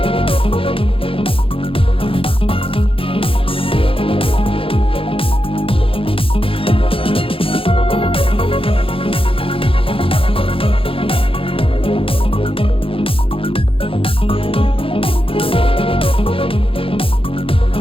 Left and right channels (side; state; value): right; late; 0.26 ms